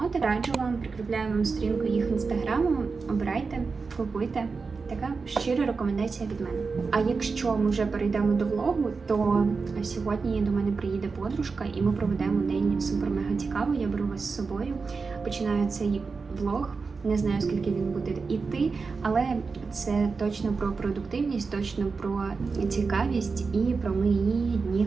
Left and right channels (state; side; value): quieter; left; 4.6 dB